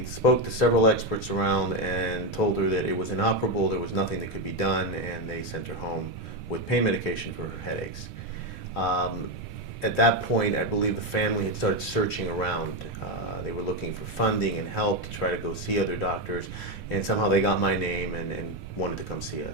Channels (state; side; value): normal; both; correlation 0.08